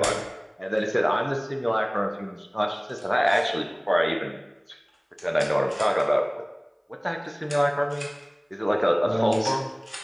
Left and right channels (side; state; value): both; identical; correlation 1.00